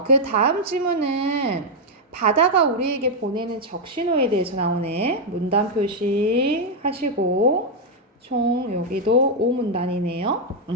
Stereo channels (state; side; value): normal; both; correlation -0.01